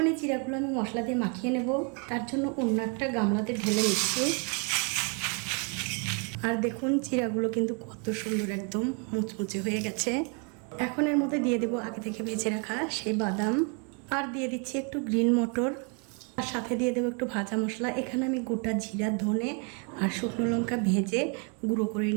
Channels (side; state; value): left; quieter; 36.8 dB